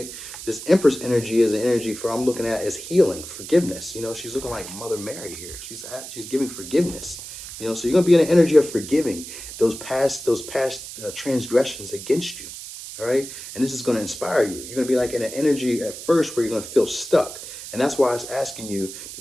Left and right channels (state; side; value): noise; right; hiss, 11 dB below the sound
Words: This Empress energy is an energy for, I'm looking at as healing, forgiveness. She's looking like Mother Mary here. She's giving forgiveness. So you're gonna be in an energy of forgiving those past transgressions against you. All right, and this is going to inspire you. You're going to be like in an energy at first where you're going to feel stuck, and that's why it's asking you